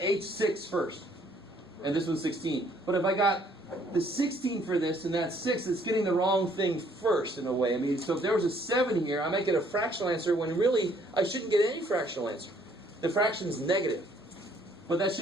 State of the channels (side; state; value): both; normal; correlation 0.63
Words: H6 first, and this one's 16. But if I got the 16 for this and that's 6, it's getting the wrong thing first in a way. I mean, so if there was a 7 here, I might get a fractional answer when really I shouldn't get any fractional answer. The fraction is negative, but that